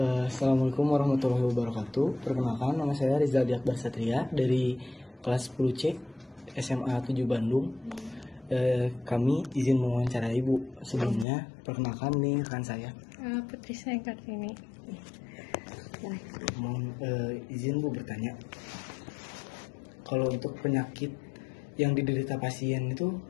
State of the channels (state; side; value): drops out; right; at 11.2 s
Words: Assalamualaikum warahmatullahi wabarakatuh. Perkenalkan, nama saya Rizal Akbar Satria dari kelas 10C SMA 7 Bandung. Kami izin mewawancarai Ibu. Sebelumnya, perkenalkan nih rekan saya. Putri Seng Kartini. Mohon izin Bu bertanya. Kalau untuk penyakit yang diderita pasien itu